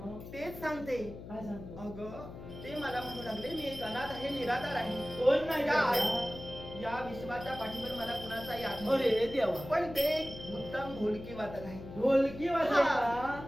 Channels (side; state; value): left; noise; hum, 12 dB below the sound